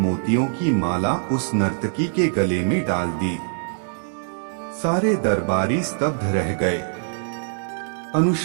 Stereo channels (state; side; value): silent; left; digital silence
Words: की माला उस नर्तकी के गले में डाल दी। सारे दरबारी स्तब्ध रह गए।